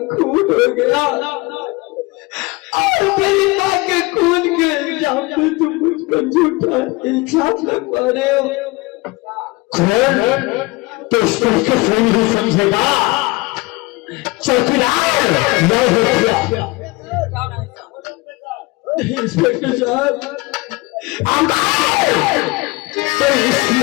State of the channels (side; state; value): right; quieter; 23.8 dB